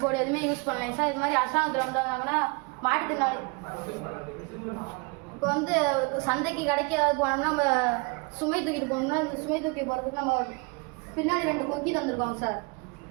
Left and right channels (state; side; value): quieter; left; 30.1 dB